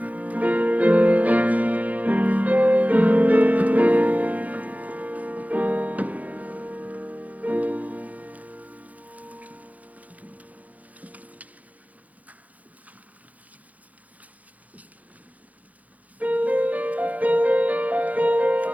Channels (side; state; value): left; late; 0.074 ms